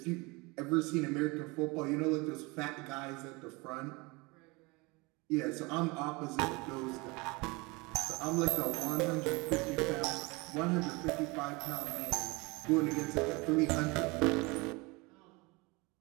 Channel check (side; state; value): left; quieter; 25.9 dB